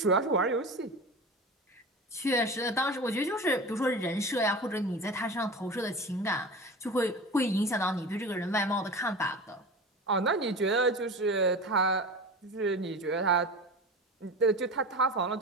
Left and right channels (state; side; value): normal; both; correlation 0.31